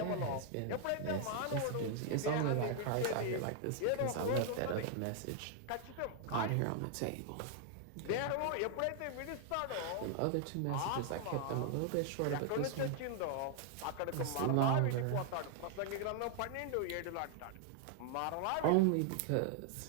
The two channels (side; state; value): both; different; correlation 0.00